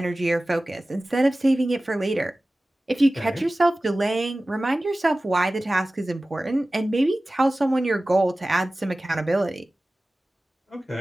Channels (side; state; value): both; normal; correlation 0.97